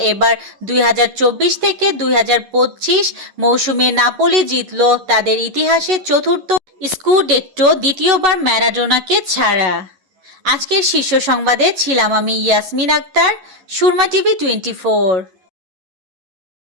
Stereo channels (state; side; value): late; left; 11 ms